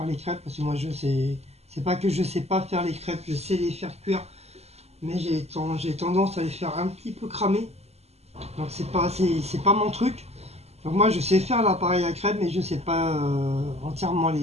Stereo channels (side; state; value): left; late; 0.30 ms